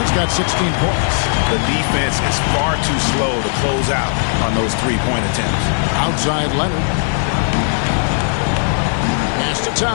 got 16 points. The defense is far too slow to close out on those three-point attempts. Outside Leonard. Pass to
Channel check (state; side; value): silent; right; digital silence